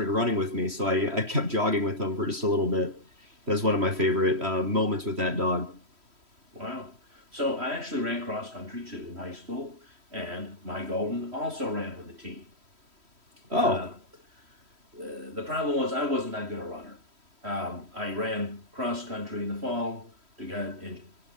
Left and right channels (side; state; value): left; late; 3.1 ms